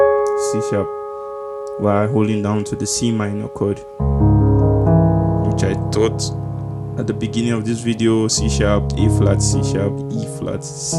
C sharp, while holding down to the C minor chord, which I thought at the beginning of this video, C sharp, A flat, C sharp, E flat, C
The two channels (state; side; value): identical; both; correlation 1.00